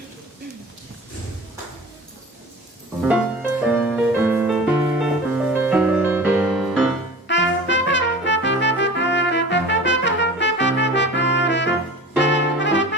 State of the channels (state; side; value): normal; both; correlation 0.38